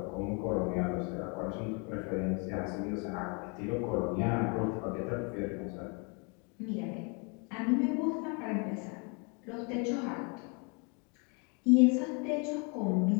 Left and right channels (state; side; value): quieter; right; 34.4 dB